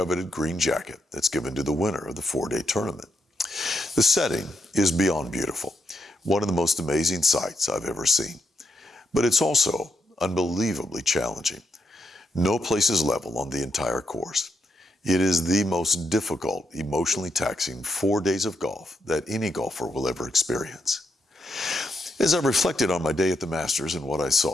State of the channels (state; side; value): normal; both; correlation 0.81